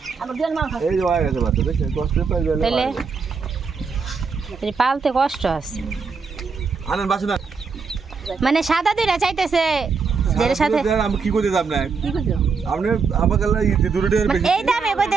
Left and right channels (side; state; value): left; quieter; 5.2 dB